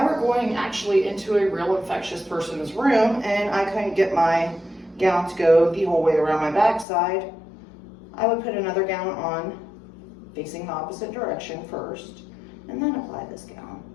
were going actually into a real infectious person's room and I couldn't get my gown to go the whole way around my backside, I would put another gown on facing the opposite direction first and then apply this gown.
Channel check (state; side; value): drops out; right; at 6.9 s